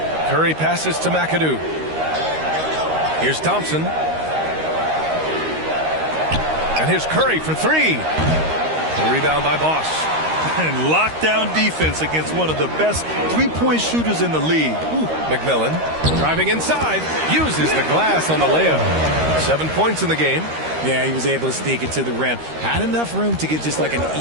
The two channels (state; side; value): late; left; 13 ms